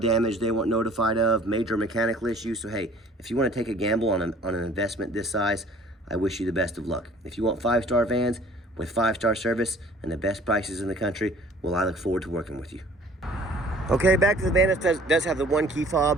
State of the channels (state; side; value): normal; both; correlation 0.52